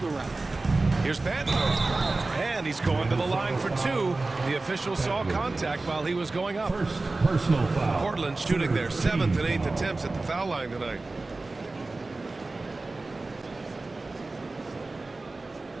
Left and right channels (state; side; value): quieter; left; 3.3 dB